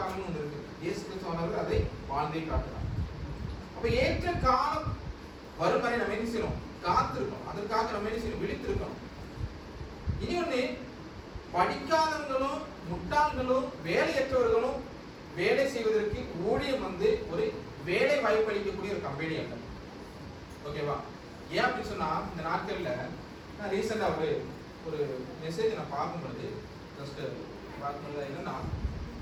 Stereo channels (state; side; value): identical; both; correlation 1.00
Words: ஒன்று இருக்கு. இயேசு கிறிஸ்து அதை வாழ்ந்தே காட்டுறாங்க. அப்ப ஏற்ற காலம் வரும் வரை நம்ம என்ன செய்யணும்? காத்திருக்கணும். அதற்காக நம்ம என்ன செய்யணும்? விழித்திருக்கணும். இனி ஒண்ணு, படிக்காதவங்களும் முட்டாள்களும் வேலையற்றவர்களும் வேலை செய்வதற்கு ஊழியம் வந்து ஒரு வேலை வாய்ப்பு அளிக்கக்கூடிய ஒரு கம்பெனி அல்ல. ஓகேவா? ஏன் அப்படின்னு சொன்னா, இந்த நாட்கள்ல நான் ரீசெண்டா ஒரு மெசேஜ் நான் பார்க்கும்பொழுது ஜஸ்ட் பார்க்கும்போது என்னன்னா,